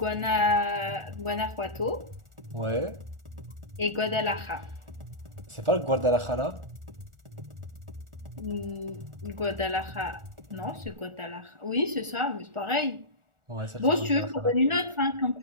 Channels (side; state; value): left; late; 1.4 ms